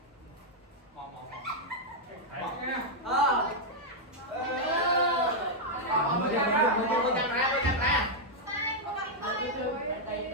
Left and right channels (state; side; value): normal; both; correlation -0.03